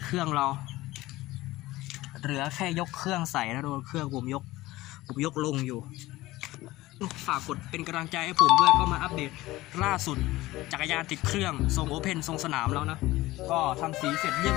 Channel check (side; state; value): right; quieter; 18.1 dB